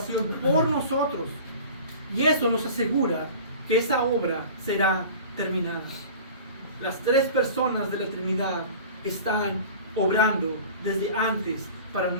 por nosotros. Y eso nos asegura que esa obra será terminada. Las tres personas de la Trinidad están obrando desde antes para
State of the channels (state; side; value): inverted; both; correlation -0.40